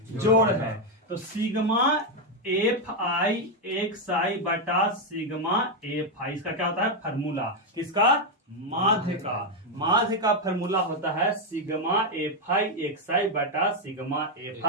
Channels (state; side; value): normal; both; correlation 0.03